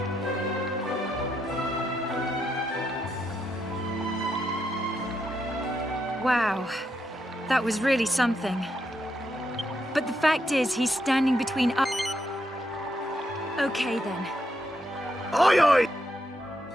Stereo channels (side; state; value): both; normal; correlation 0.80